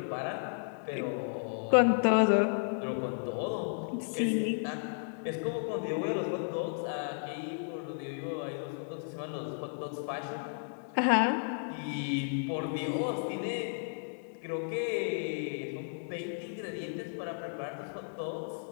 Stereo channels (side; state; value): right; silent; 55 dB below the other